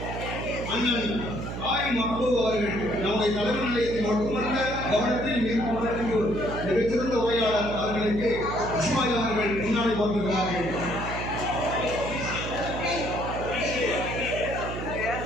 அண்ணன் மக்பூப் அவர்கள் நம்முடைய தலைவர் நிலையத்தில் மட்டுமல்ல கவனத்தில் மிகச்சிறந்த உரையாளர் அவர்களுக்கு இஸ்மாயில் அவர்கள் முன்னாடி கொண்டிருக்கிறார்கள்.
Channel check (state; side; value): noise; right; hum, 6 dB below the sound